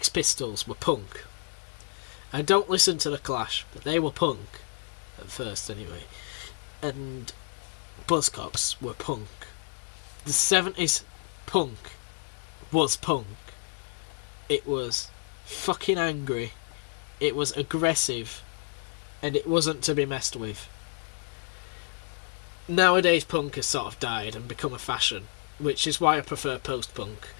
Pistols were punk. I don't listen to The Clash, but they were punk. At first anyway. And Buzzcocks were punk. The 70s punk was punk. It was fucking angry. It was aggressive. And it wasn't to be messed with. Nowadays punk has sort of died and become a fashion, which is why I prefer post-punk.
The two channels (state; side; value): silent; right; 58 dB below the other